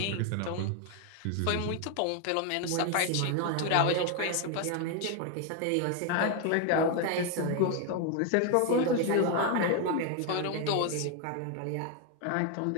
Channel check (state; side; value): different; both; correlation 0.01